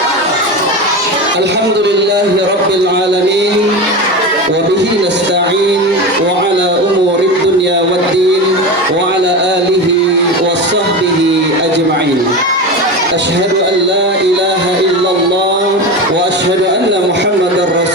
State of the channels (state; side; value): normal; both; correlation 0.24